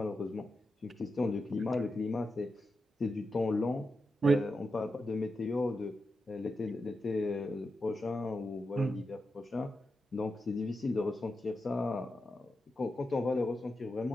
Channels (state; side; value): normal; both; correlation 0.88